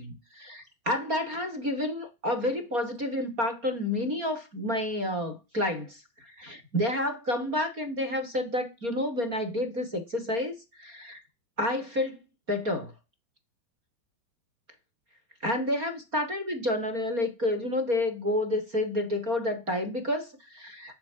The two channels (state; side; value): late; left; 4.3 ms